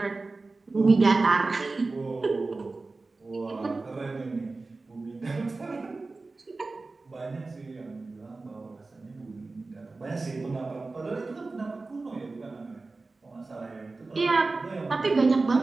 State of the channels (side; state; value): left; quieter; 3.6 dB